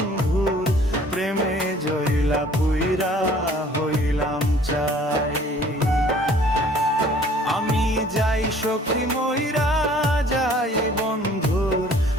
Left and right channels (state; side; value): normal; both; correlation 0.54